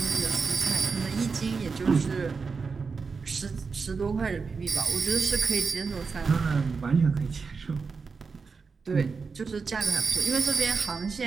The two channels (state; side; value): quieter; left; 5.0 dB